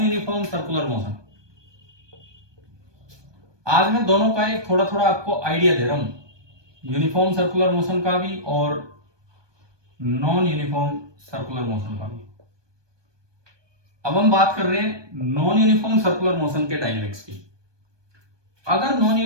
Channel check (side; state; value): left; late; 1.2 ms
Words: यूनिफॉर्म सर्कुलर मोशन, आज मैं दोनों का एक थोड़ा थोड़ा आपको आइडिया दे रहा हूं, यूनिफॉर्म सर्कुलर मोशन का भी और नॉन यूनिफॉर्म सर्कुलर मोशन का भी। अब हम बात कर रहे हैं नॉन यूनिफॉर्म सर्कुलर मोशन के डायनेमिक्स की। अगर नॉन